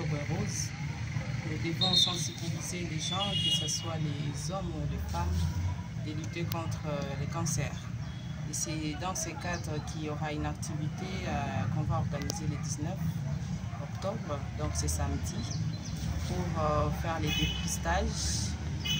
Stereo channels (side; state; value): both; identical; correlation 1.00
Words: rose. Nous devons sensibiliser les gens, que ce soit les hommes ou les femmes, de lutter contre le cancer. Et c'est dans ce cadre qu'il y aura une activité qu'on va organiser le 19 octobre, donc c'est samedi, pour faire les dépistages